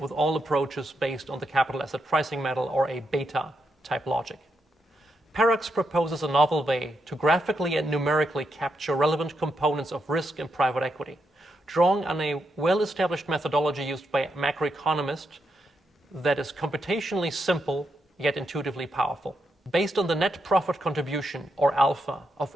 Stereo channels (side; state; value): both; normal; correlation 0.82